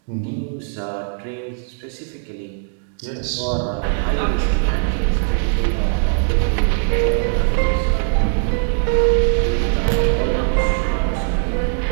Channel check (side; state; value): left; silent; 65 dB below the other